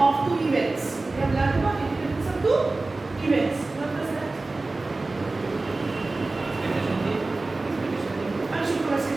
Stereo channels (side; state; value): left; quieter; 3.3 dB